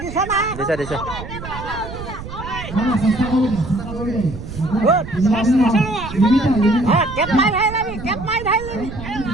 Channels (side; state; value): right; noise; rumble, 11 dB below the sound